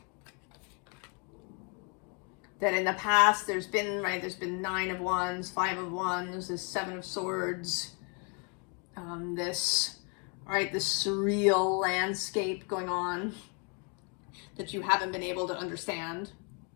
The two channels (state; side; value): quieter; right; 35.9 dB